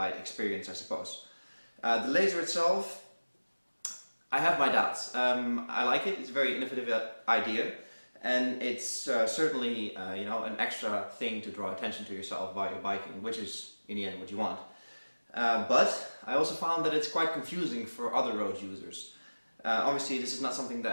experience, I suppose. The laser itself, I have my doubts. I like it. It's a very innovative idea. And it's certainly, you know, an extra thing to draw attention to yourself while you're biking, which is in the end what you want. But I also found that it's quite confusing for other road users. Obviously this is not something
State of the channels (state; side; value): inverted; both; correlation -1.00